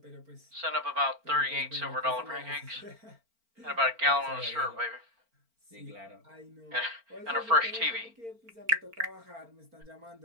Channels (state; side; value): late; left; 4.4 ms